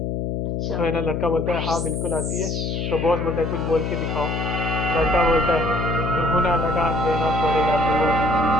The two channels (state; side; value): noise; left; hum, 2 dB below the sound